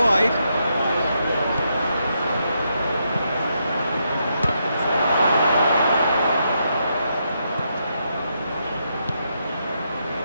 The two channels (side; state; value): both; inverted; correlation -0.80